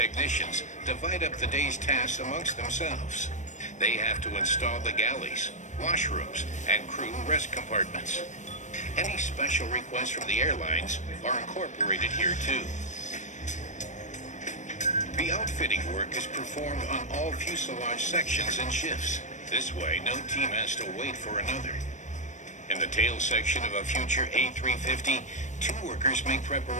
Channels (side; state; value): right; late; 0.35 ms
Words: divide up the day's tasks amongst themselves. They have to install the galleys, washrooms, and crew rest compartments. Any special requests from the airlines are incorporated here too. The outfitting work is performed on all fuselage sections and shifts. This way, no team has to wait for another. In the tail section of a future A350, 2 workers make